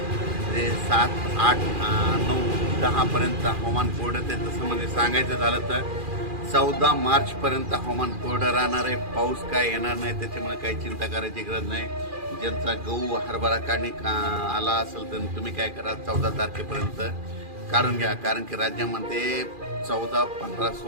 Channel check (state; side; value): late; left; 2.4 ms